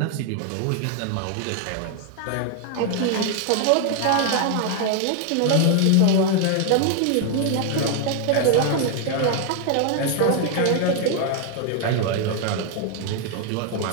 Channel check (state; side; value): different; both; correlation 0.00